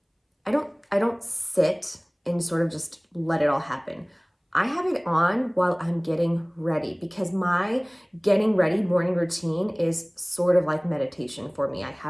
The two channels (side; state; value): both; identical; correlation 1.00